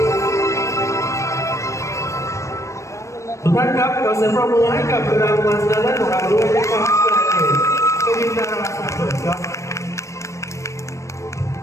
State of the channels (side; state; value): right; late; 0.15 ms